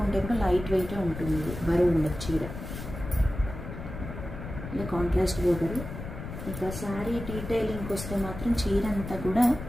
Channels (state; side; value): noise; left; rumble, 9 dB below the sound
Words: కూడా లైట్ వెయిట్ ఉంటుంది. ఇది బరువు ఉండదు చీర. ఇది కాంట్రాస్ట్ బోర్డర్. ఇక శారీ డీటెయిలింగ్కి వస్తే మాత్రం చీర అంతా కూడా